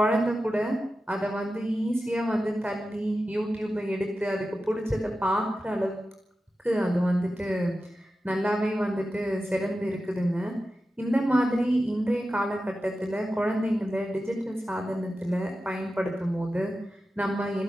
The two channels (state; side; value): normal; both; correlation 0.92